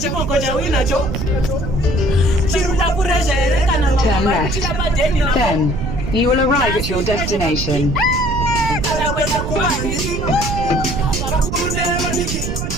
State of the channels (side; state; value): right; noise; rumble, 4 dB below the sound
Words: cha winacho. Chiruda kurejere kana mama. Then you will arrive at your destination.